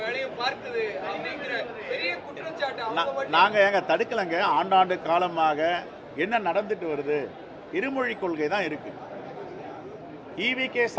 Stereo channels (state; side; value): identical; both; correlation 1.00